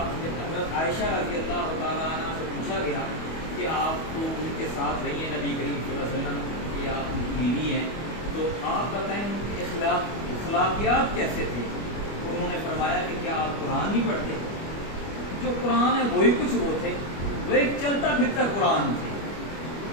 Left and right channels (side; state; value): right; late; 25 ms